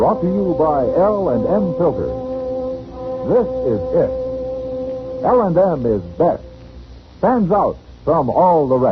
to you by L&M Filters. This is it. L&M is best. Stands out from all the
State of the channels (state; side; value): identical; both; correlation 1.00